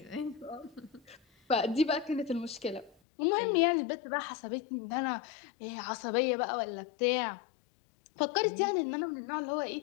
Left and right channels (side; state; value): right; drops out; at 2.9 s